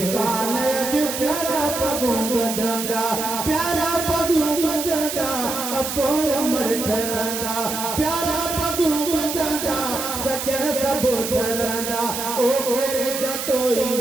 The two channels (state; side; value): noise; right; hiss, 5 dB below the sound